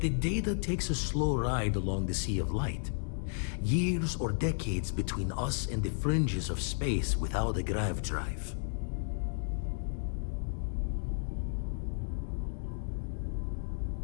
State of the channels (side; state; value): right; silent; digital silence